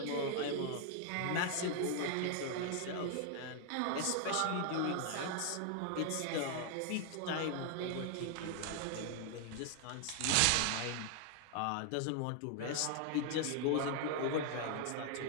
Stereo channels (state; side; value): different; both; correlation 0.00